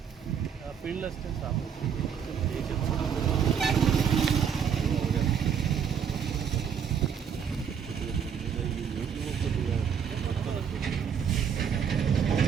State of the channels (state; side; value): quieter; left; 7.5 dB